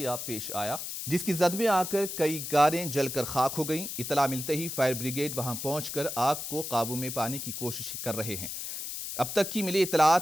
पेश आया, जिसकी जद में आकर कई कारें जलकर खाक हो गईं। इतला मिलते ही फायर ब्रिगेड वहां पहुंचकर आग को काबू में पाने की कोशिश कर रहे हैं। अब तक की मिली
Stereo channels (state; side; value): noise; left; hiss, 6 dB below the sound